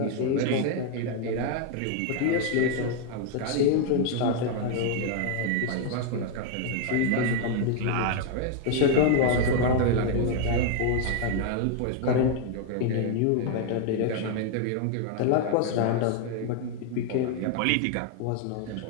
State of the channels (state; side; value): different; both; correlation 0.00